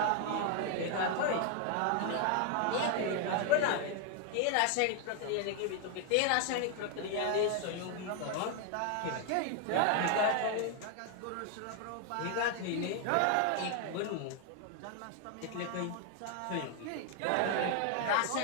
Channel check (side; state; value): both; different; correlation 0.00